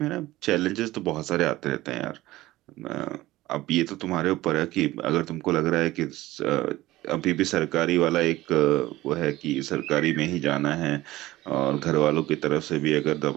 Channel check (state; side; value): quieter; left; 17.2 dB